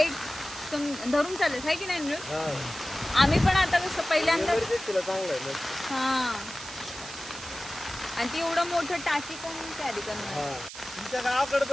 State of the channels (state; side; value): noise; right; hiss, 12 dB below the sound